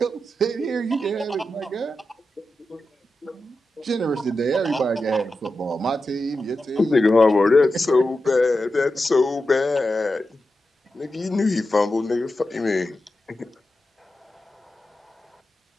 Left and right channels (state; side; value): normal; both; correlation 0.91